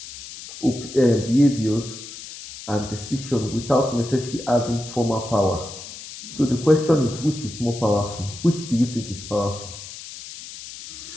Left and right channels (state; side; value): noise; left; hiss, 13 dB below the sound